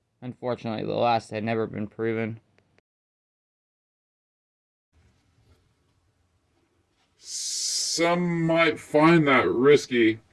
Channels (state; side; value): identical; both; correlation 1.00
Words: Unfortunately, the last had never been proven. Some might find that risky,